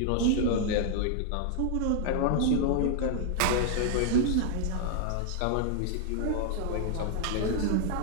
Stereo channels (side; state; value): both; different; correlation -0.01